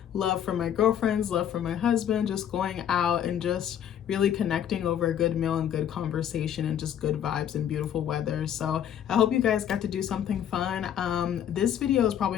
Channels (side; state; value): right; quieter; 9.8 dB